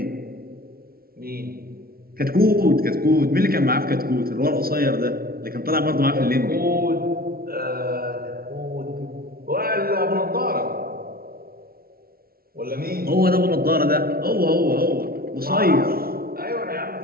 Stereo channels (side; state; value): left; late; 0.44 ms